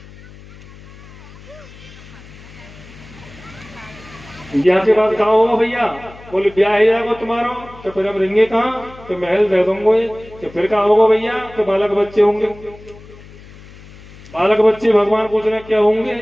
ब्याह के बाद कहा होगा भैया? बोले ब्याह ही जाएगा तुम्हारा, तो फिर अब रहेंगे कहाँ? तो महल दे दूंगे। तो फिर कहा होगा भैया? तो बालक बच्चे होंगे। बालक बच्चे भगवान पूछ रहे क्या होंगे?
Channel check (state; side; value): noise; left; hum, 20 dB below the sound